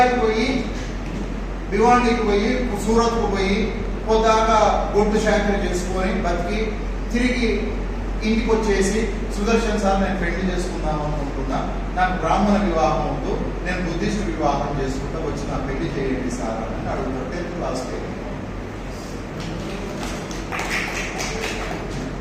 పోయి, భివాండికి పోయి, సూరత్కు పోయి పొద్దాకా గొడ్డు శాఖలు చేసుకొని బతికి తిరిగి ఇంటికి వచ్చేసి, సుదర్శన్ సార్ నేను పెళ్లి చేసుకుందాం అనుకుంటున్నా, నాకు బ్రాహ్మణ వివాహం వద్దు, నేను బుద్ధిస్ట్ వివాహం చేసుకుంటా, వచ్చి నా పెళ్లి చేయండి సార్ అని అడుగుతారు. 10th class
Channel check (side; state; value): both; identical; correlation 1.00